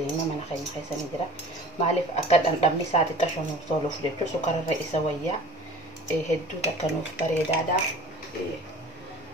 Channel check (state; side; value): normal; both; correlation 0.43